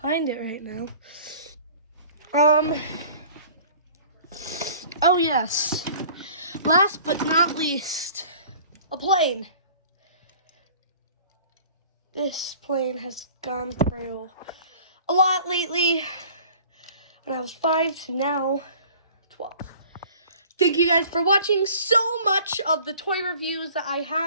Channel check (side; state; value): both; inverted; correlation -0.48